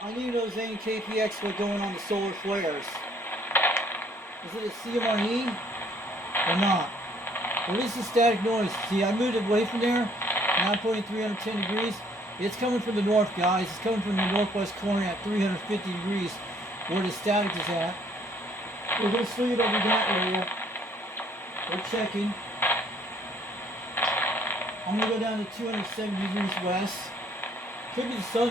I need those KPX what's going on the solar flares. Is it a CMRE or not? What is the static noise? See, I moved away from there. Now I'm pointing 310 degrees. It's coming from the north, guys. It's coming from the northwest corner at 350 degrees, where the static is at. We're going to swing it over that area. We're checking. I'm going to go down to 270 degrees west. Could be the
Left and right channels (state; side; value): normal; both; correlation 0.62